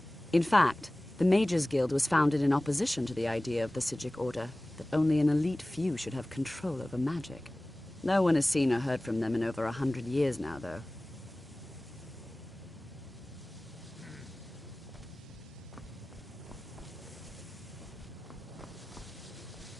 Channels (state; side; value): normal; both; correlation 0.98